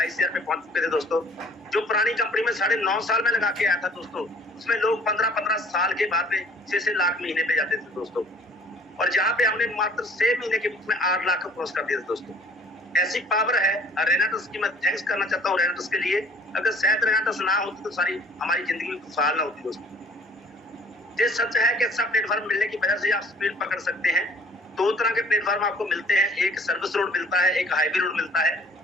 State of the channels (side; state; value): both; normal; correlation 0.53